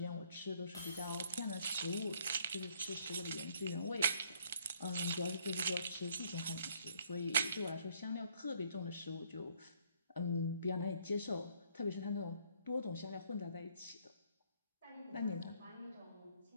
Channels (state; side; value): inverted; both; correlation -0.65